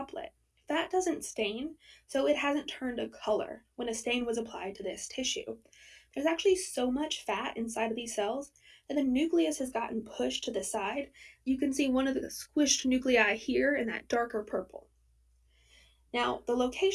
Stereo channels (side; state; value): both; identical; correlation 1.00